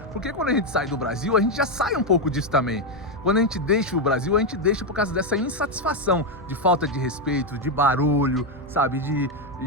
Porque quando a gente sai do Brasil, a gente já sai um pouco disso também. Quando a gente deixa o Brasil, a gente deixa por causa dessa insatisfação, de falta de respeito, de barulho, sabe? De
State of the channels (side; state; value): both; normal; correlation 0.06